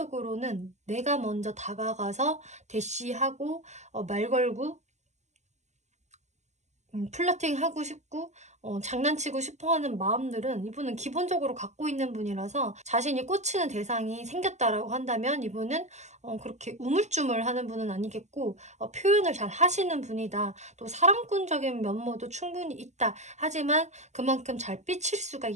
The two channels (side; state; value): left; late; 0.33 ms